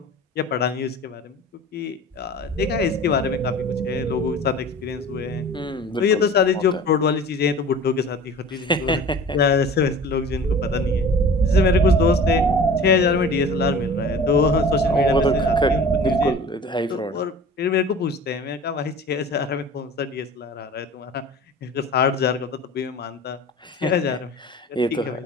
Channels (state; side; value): normal; both; correlation 0.41